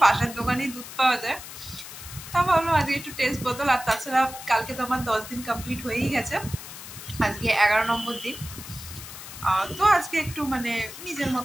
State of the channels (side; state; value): left; noise; hiss, 12 dB below the sound